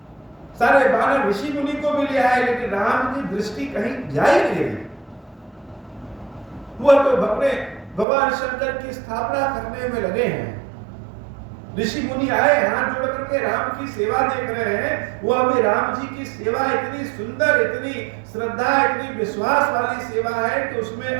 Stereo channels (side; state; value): left; drops out; at 8.1 s